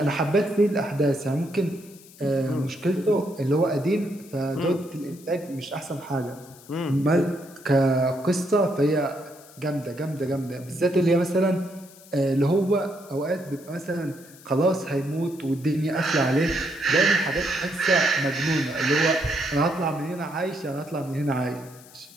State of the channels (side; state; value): left; noise; hiss, 22 dB below the sound